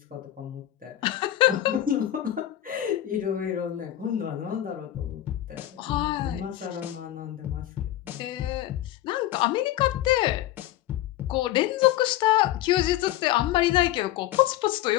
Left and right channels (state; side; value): quieter; right; 13.6 dB